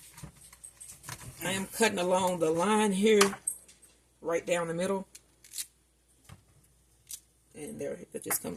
I am cutting along the line here, right down the middle. And there, it just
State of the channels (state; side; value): identical; both; correlation 1.00